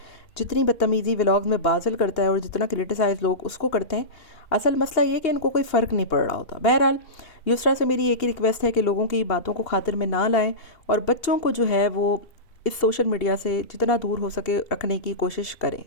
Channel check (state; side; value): late; right; 2.8 ms